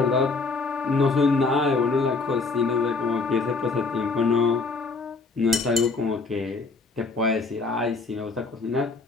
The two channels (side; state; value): right; quieter; 4.0 dB